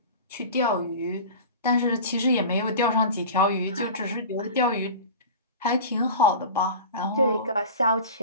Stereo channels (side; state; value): both; inverted; correlation -0.34